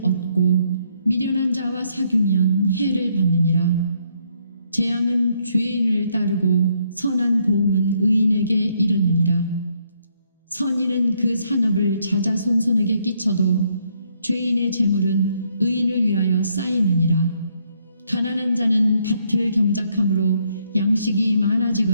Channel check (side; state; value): both; inverted; correlation -0.72